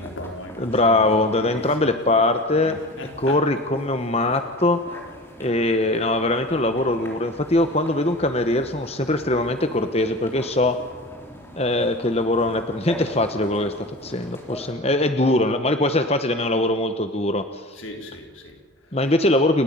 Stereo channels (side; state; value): both; normal; correlation 0.36